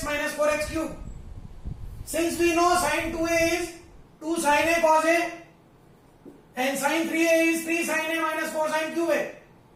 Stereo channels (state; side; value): identical; both; correlation 1.00